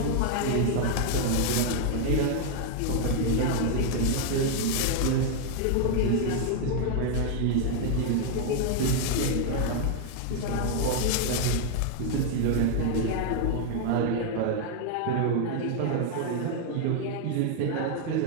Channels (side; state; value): both; different; correlation 0.00